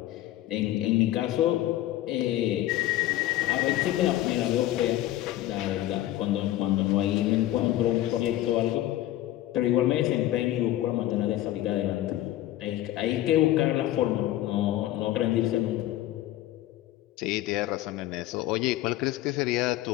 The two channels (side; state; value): right; quieter; 14.4 dB